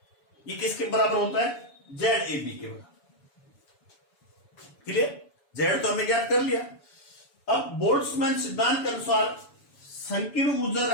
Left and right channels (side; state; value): right; late; 7.0 ms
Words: ये किसके बराबर होता है? ZAB के बराबर। क्लियर? Z तो हमने ज्ञात कर लिया। अब बोल्ट्जमान सिद्धांत के अनुसार संकीर्ण ऊर्जा